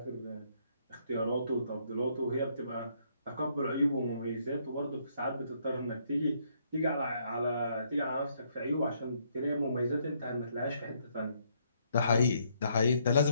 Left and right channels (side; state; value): both; inverted; correlation -0.71